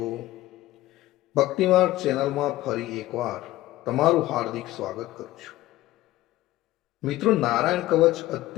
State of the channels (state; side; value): quieter; right; 16.2 dB